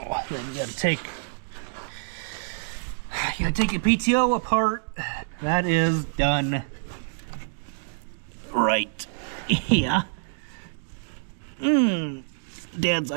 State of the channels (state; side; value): silent; left; digital silence